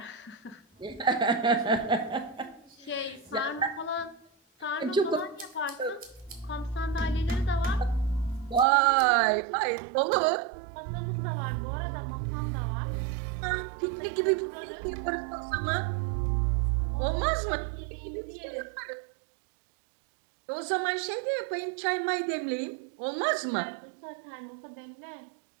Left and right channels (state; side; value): drops out; left; at 8.7 s